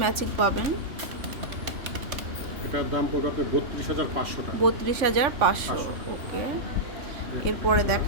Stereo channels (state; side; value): late; left; 3.5 ms